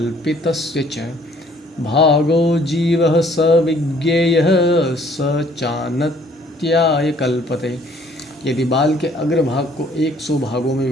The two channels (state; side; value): normal; both; correlation 0.59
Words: च भागो जीवः स विज्ञेयः स चानत्याय कल्पते। यदि बाल के अग्र भाग को 100 भागों में